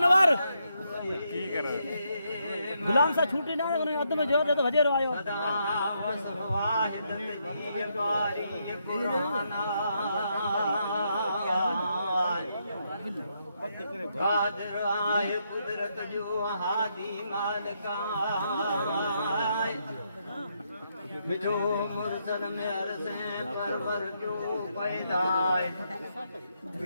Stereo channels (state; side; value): inverted; both; correlation -0.78